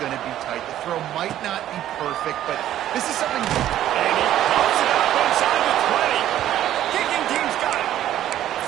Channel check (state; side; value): quieter; left; 12.3 dB